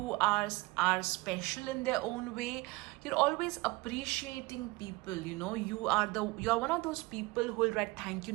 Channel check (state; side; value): quieter; left; 23.0 dB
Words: are special in their own way. You're always appreciating people. You are one of those people who will write thank you